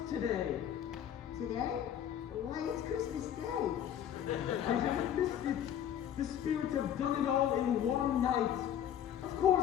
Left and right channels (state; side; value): quieter; right; 10.0 dB